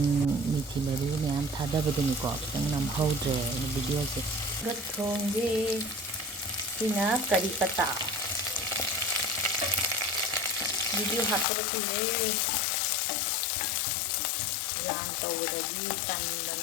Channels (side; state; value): right; drops out; at 11.5 s